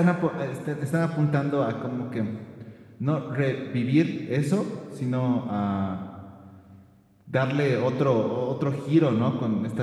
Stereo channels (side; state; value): both; identical; correlation 1.00